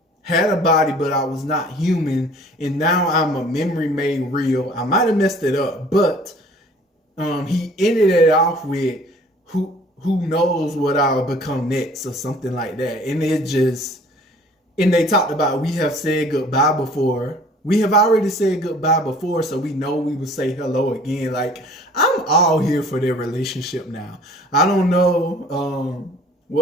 had a body, but I was not human, and now I'm a memory made real. I might have messed it up, but he ended it off with who knows what I'll become next or something like that. And it just, and they talked about we have said goodbye before. We have already said goodbye before, so we know we will say hello again. Like, I'm all here for their relationship now. I don't know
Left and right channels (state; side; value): normal; both; correlation 0.51